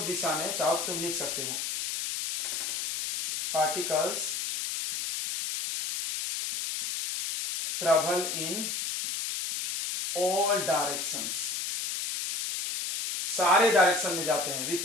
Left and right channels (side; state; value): left; noise; hiss, 3 dB below the sound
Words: दिशा में, चाहो तो तुम लिख सकते हो, particles travel in all directions, सारे डायरेक्शन में जाते हैं